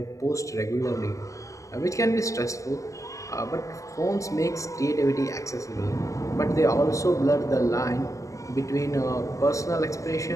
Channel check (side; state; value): right; late; 0.16 ms